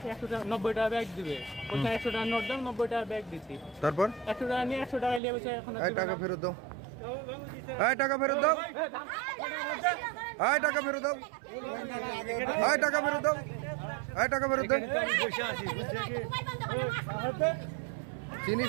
100 টাকা 90 টাকা ব্যাগ দিবে, ওকে 100 টাকা নোট দাও, 90 টাকা ব্যাগ দিচ্ছি। তারপর 100 টাকা নিয়ে 100 টাকা নিয়ে বসে এখন টাকা ফেরত দাও, টাকা ফেরত দাও, টাকা ফেরত দাও, টাকা ফেরত দাও, টাকা ফেরত দাও।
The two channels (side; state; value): left; drops out; at 5.2 s